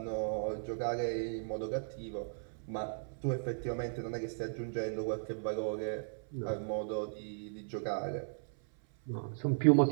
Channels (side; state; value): left; silent; 54 dB below the other